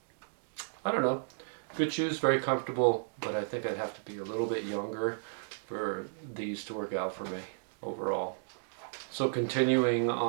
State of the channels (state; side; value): silent; left; digital silence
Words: don't know. Good shoes, very comfortable, but I think I'd have to be a little bit younger for these to work out for me overall. So continuing